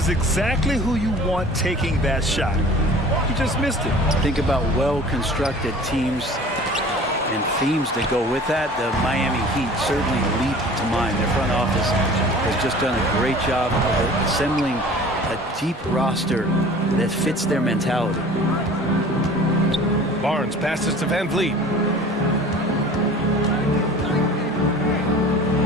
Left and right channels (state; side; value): normal; both; correlation 0.44